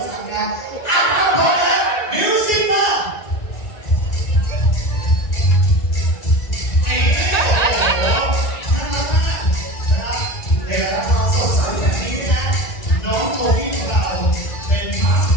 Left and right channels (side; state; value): right; late; 1.9 ms